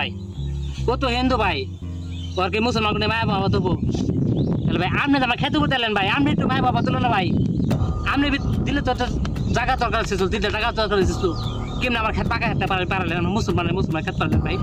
ও তো হিন্দু ভাই ওর কি মুসলমান কোনো মায়া বাবা তবু তাহলে ভাই আপনি আমার খেতে করতে এলেন ভাই আপনি একটু মায়া বাবা তুলো না ভাই আপনি দিলে তো জায়গা দরকার ছিল দিলে জায়গা দরকার ছিল কেমন আমার খেত পাকা খেতে পারলেন মুসলমান খেতে পারলেন ভাই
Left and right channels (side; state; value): both; identical; correlation 1.00